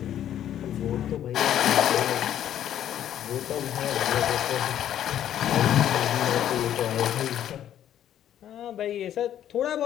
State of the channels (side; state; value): right; quieter; 10.9 dB